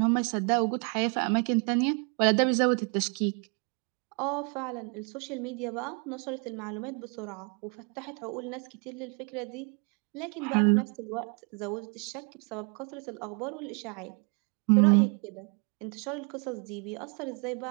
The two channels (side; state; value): left; quieter; 36.6 dB